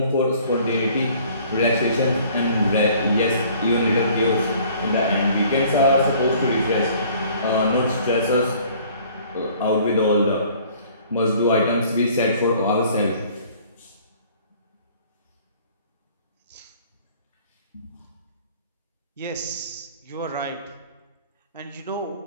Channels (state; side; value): inverted; both; correlation -0.54